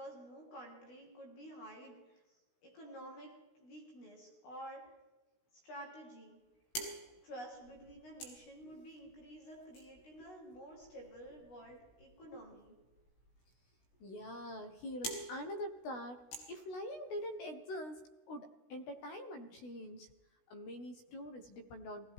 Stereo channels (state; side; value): late; right; 16 ms